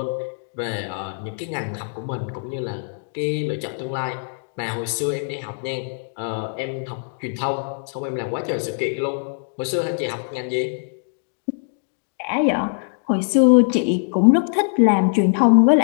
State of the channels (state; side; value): silent; right; digital silence